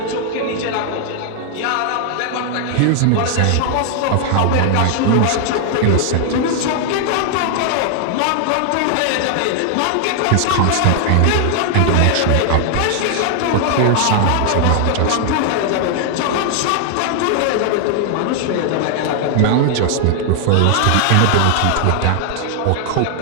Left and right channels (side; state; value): both; different; correlation 0.00